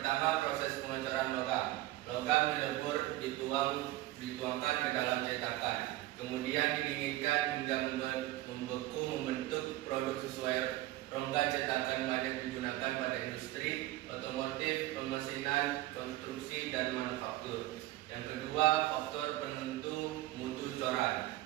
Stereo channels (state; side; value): quieter; left; 16.8 dB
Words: proses pengecoran logam. Logam dilebur dituangkan ke dalam cetakan, kemudian didinginkan hingga membeku membentuk produk sesuai rongga cetakan banyak digunakan pada industri, otomotif, pemesinan, konstruksi, dan manufaktur. Yang kedua, faktor penentu mutu coran,